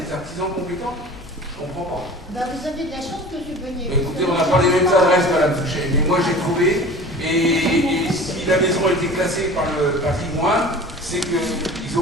artisans compétents. Je comprends pas. Ben, vous avez de la chance, M. Beunier. Écoutez, on n'a pas les mêmes adresses, Madame Fouché, mais moi j'ai trouvé, et si la maison a été classée par le patrimoine, c'est qu'ils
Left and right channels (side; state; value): both; normal; correlation 0.40